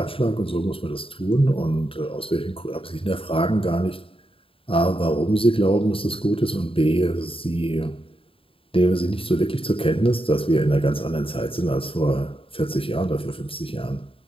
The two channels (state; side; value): late; right; 0.27 ms